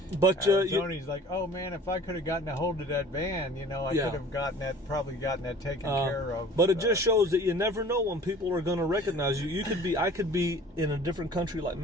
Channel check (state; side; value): normal; both; correlation 0.46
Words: Arizona. He's like, oh, man, if I could have gotten a hold of that van, I could have probably gotten that taken care of. But it just shows that you never know when people are going to recognize you. I could be in a different country like